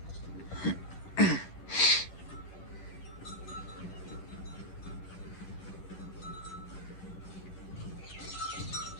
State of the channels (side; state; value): right; late; 10 ms